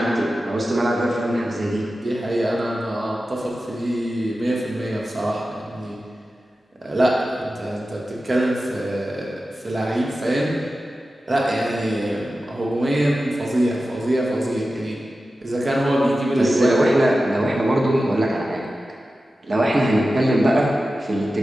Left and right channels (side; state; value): both; normal; correlation 0.93